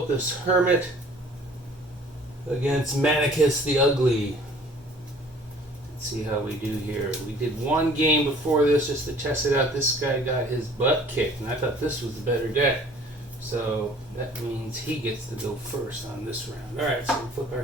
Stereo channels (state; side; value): normal; both; correlation 0.52